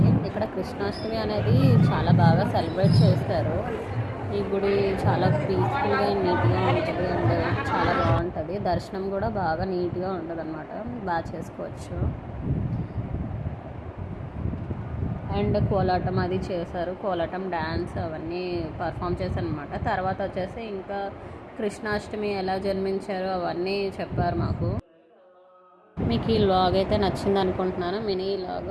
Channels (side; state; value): both; identical; correlation 1.00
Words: ఇక్కడ కృష్ణాష్టమి అనేది చాలా బాగా సెలబ్రేట్ చేస్తారు. ఈ గుడి చాలా పీస్ఫుల్గా నీట్గా ఉంటుంది అండ్ చాలా బాగుంటుంది. దర్శనం కూడా బాగా నీట్గా ఉంటుంది అనమాట, బాగా చేసుకోవచ్చు. అండ్ కోలాటం అది చేశారు, కోలాటం డ్యాన్స్ అవన్నీ పర్ఫామ్ చేశారు అనమాట. తర్వాత వచ్చేసి ఇంకా కృష్ణాష్టమి ఎలా జన్మించారో అవన్నీ చెప్పారు మాకు. మీకు ఈ వ్లాగ్ అయితే నచ్చింది అనుకుంటున్నాను, మినీ